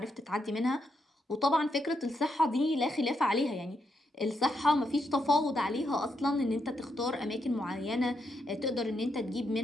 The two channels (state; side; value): normal; both; correlation 0.80